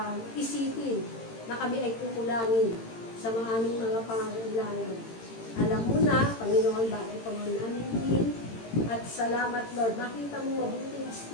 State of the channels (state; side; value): late; right; 18 ms